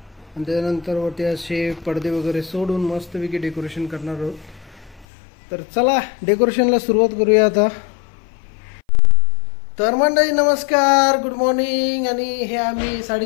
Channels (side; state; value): right; drops out; at 5.1 s